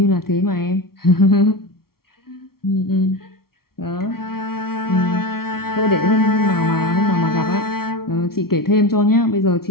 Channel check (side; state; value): right; late; 0.94 ms